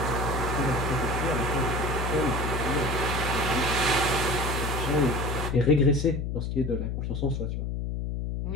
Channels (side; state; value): left; noise; hum, 2 dB below the sound